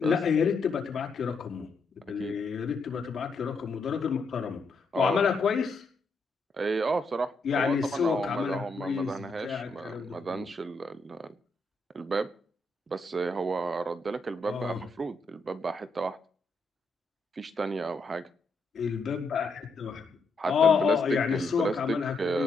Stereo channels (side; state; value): right; quieter; 3.2 dB